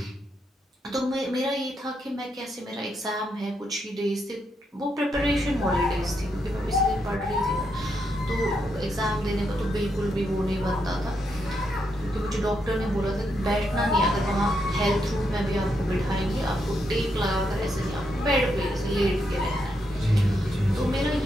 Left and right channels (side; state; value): both; normal; correlation 0.80